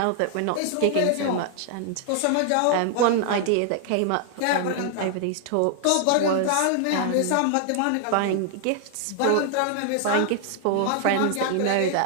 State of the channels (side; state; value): both; different; correlation 0.00